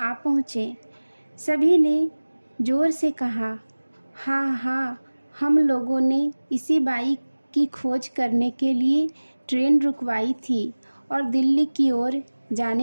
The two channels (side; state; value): both; inverted; correlation -1.00